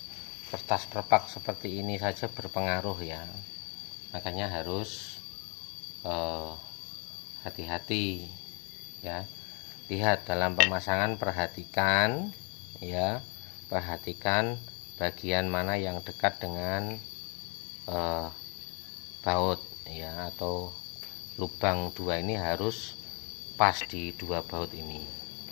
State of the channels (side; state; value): right; quieter; 35.1 dB